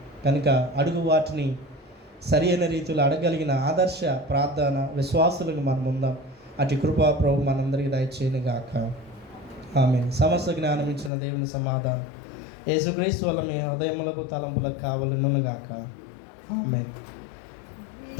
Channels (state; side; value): drops out; right; at 11.1 s